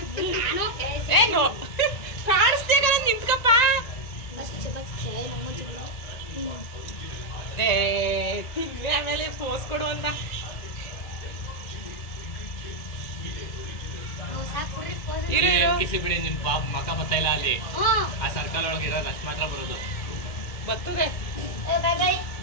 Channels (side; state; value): right; late; 1.9 ms